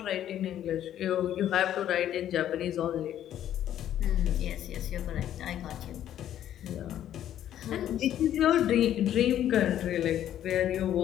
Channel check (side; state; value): right; quieter; 11.3 dB